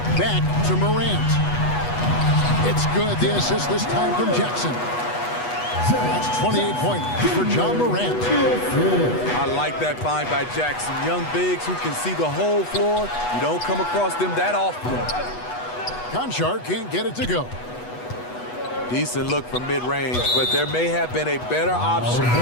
Back to Morant. It's good. The assist this time from Jackson. That's 28 points for Ja Morant. I like that find by Jackson. Young bigs who can see the whole floor. You don't come across them that often. Conchar can't get it to go. Decent look from mid-range, but there may have been a better option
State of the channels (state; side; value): late; right; 8.2 ms